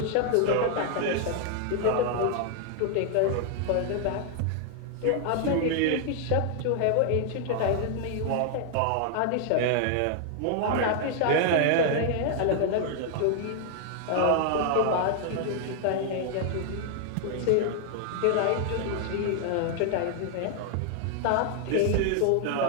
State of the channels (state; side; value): different; both; correlation 0.00